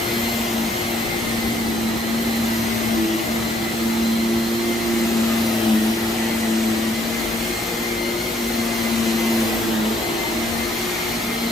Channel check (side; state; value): both; normal; correlation 0.67